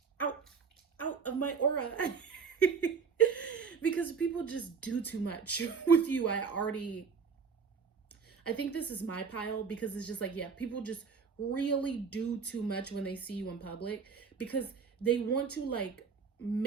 out of my aura. Because people just do too much with you. I think this is my pile, because it's just like, yeah, people just really do too much when they see you in public, because they want to like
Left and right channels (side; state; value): left; quieter; 5.7 dB